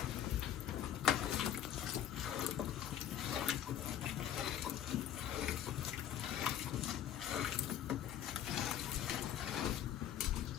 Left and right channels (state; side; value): quieter; right; 10.2 dB